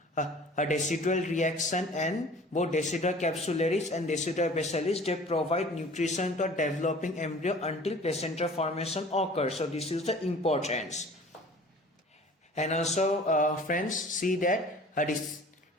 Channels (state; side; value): normal; both; correlation 0.46